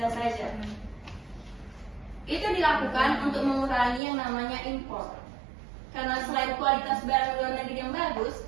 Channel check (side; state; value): left; drops out; at 4.0 s